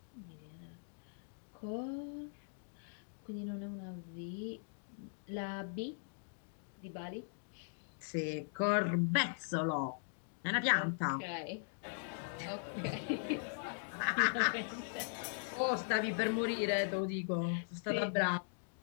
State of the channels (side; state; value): right; silent; digital silence